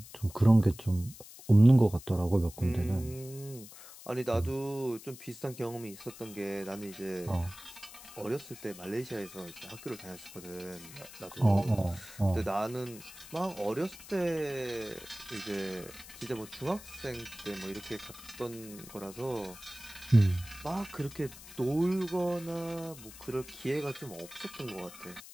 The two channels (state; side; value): noise; left; hiss, 16 dB below the sound